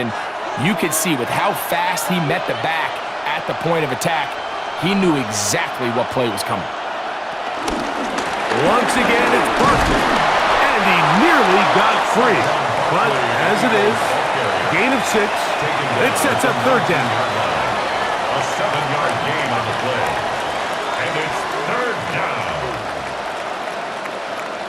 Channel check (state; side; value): identical; both; correlation 1.00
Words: you could see with how fast he met the back at the point of attack, he knew exactly what play was coming. Once again, it's Barkley. And he nearly got free. But as it is, gain of 6. It sets up third down. A 7-yard gain on the play. And it's third down.